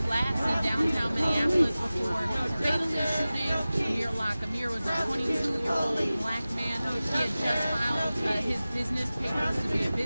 Flats in downtown Minneapolis before fatally shooting Amir Locke. Amir was a 22-year-old black man. He had just filed his business papers to be a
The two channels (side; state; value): both; inverted; correlation -0.97